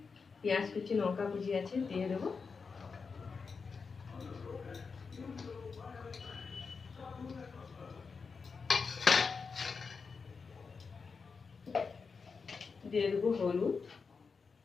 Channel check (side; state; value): right; quieter; 5.1 dB